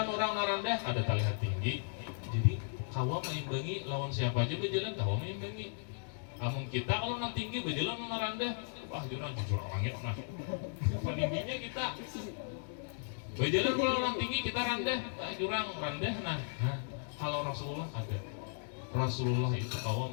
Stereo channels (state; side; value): silent; right; digital silence